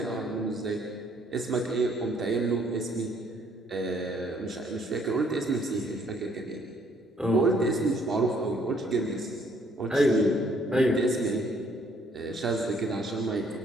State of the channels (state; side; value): normal; both; correlation 0.65